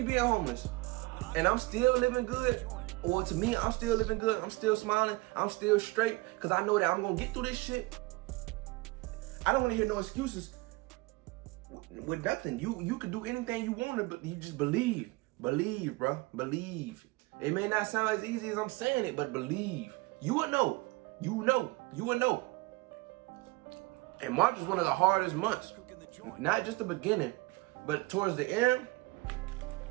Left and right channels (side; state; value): left; quieter; 22.8 dB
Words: being homeless. And I'm still living good. Well, to me, I'm still living good. I'm still smiling. I'm still straight because I know that I'm going to get through this shit. I don't want to hear no excuses with nothing. You can do anything you want to, but you just believe. Believe, bro. Believe. It may not sound as easy as I'm saying it, but believe. You will know. You know. You will know. And March was one of the hardest months. Not just the beginning, but towards the end,